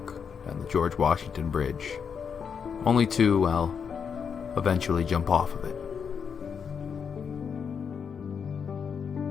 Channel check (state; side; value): quieter; right; 6.7 dB